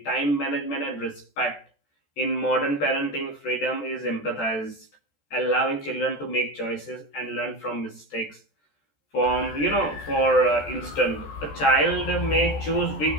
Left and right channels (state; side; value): late; right; 14 ms